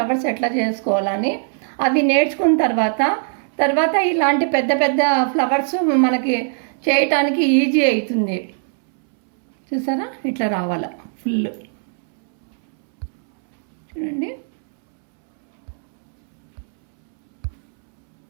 ఎట్లా చేసుకోవాలని. అవి నేర్చుకున్న తర్వాత ఇలాంటి పెద్ద పెద్ద ఫ్లవర్స్ మనకి చేయటానికి ఈజీ అవుతుంది. చూసారా ఇట్లా రావాల ఫుల్. చూడండి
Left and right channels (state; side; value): silent; left; 66 dB below the other